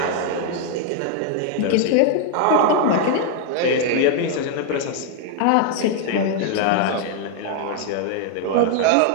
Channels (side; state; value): both; different; correlation 0.00